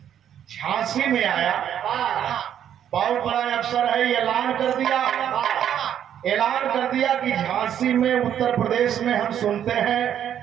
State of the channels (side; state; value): left; quieter; 9.8 dB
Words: झांसी में आया, बहुत बड़ा अफसर है, ऐलान कर दिया कि झांसी में उत्तर प्रदेश में हम सुनते हैं